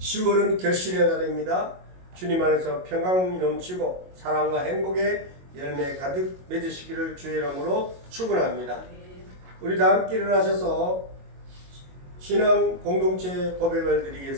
결실의 달입니다. 주님 안에서 평강이 넘치고 사랑과 행복의 열매 가득 맺으시기를 주의 이름으로 축원합니다. 우리 다 함께 일어나셔서 신앙 공동체 고백을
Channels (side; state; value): left; late; 22 ms